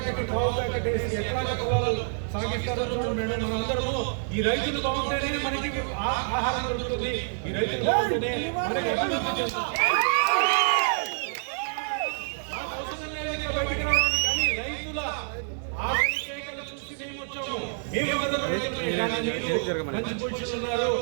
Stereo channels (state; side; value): silent; left; 60 dB below the other